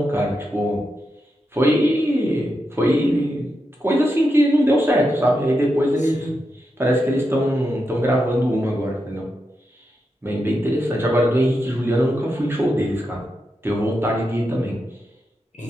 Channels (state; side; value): normal; both; correlation 0.86